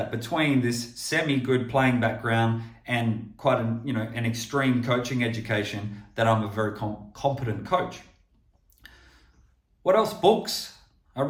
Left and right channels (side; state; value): both; identical; correlation 1.00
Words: between this semi-good playing background and quite an extreme coaching education, that I'm a very competent coach. What else? Books. I